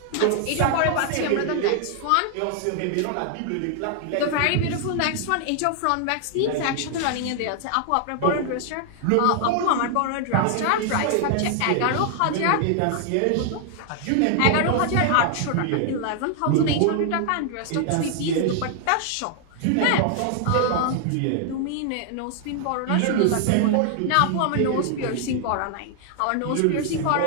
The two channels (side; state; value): both; different; correlation 0.00